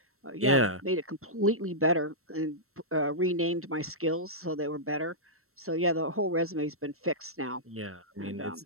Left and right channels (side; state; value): left; late; 0.63 ms